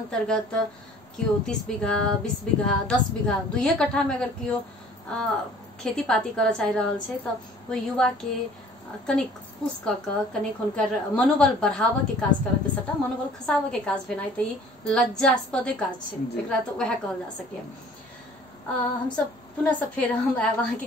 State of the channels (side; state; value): both; normal; correlation 0.52